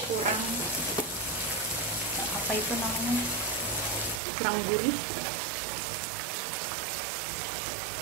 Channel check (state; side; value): drops out; left; at 4.2 s